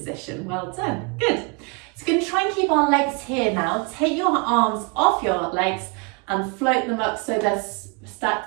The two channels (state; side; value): quieter; left; 32.1 dB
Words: Well done, good. So we're going to try and keep our legs here now. Take your arms off your legs and float them up so they're